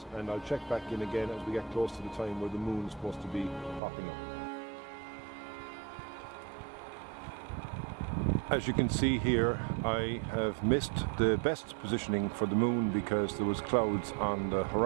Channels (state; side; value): drops out; left; at 3.8 s